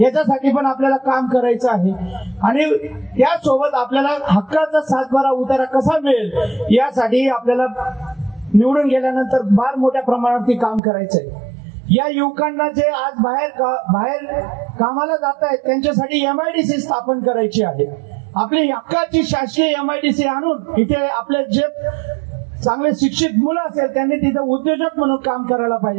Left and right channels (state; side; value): drops out; left; at 10.8 s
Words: याच्यासाठी पण आपल्याला काम करायचं आहे. आणि त्यासोबत आपल्याला हक्काचा 7/12 उतारा कसा मिळेल यासाठी आपल्याला निवडून गेल्यानंतर फार मोठ्या प्रमाणावरती काम करायचंय. या युवकांना जे आज बाहेर कामाला जात आहेत त्यांच्यासाठी MIDC स्थापन करायची आहे. आपली हक्काची शासकीय MIDC आणून इथे आपले जे चांगले शिक्षित मुलं असेल त्यांनी तिथे उद्योजक म्हणून काम करायला